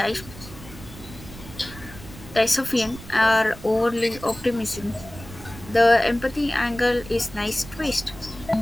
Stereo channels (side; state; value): right; noise; rumble, 16 dB below the sound